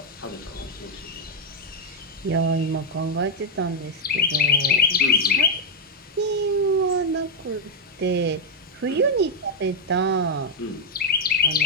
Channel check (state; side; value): normal; both; correlation 0.01